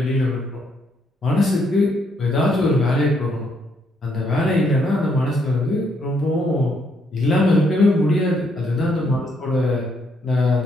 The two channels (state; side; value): normal; both; correlation 0.73